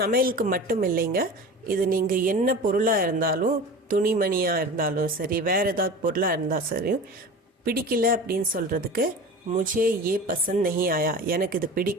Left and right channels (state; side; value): normal; both; correlation 0.35